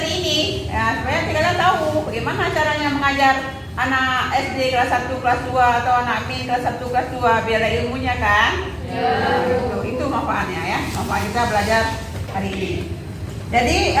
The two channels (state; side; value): identical; both; correlation 1.00